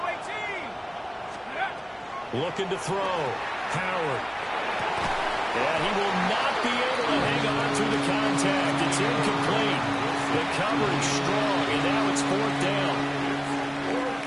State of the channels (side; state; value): both; identical; correlation 1.00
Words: Looking to throw. Howard. And he will not be able to hang on through the contact. It's incomplete. The coverage strong, and now it's 4th down.